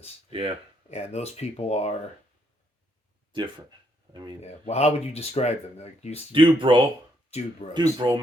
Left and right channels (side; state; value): both; normal; correlation 0.73